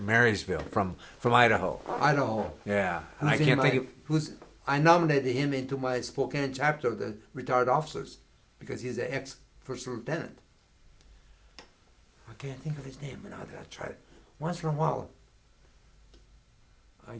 from Idaho. Idaho. Yeah, and I can't think of. I nominated him into my Spokane chapter of the retired officers because he's an ex-first lieutenant. I can't think of his name now that I tried it. Once in a while, I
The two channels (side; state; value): both; identical; correlation 1.00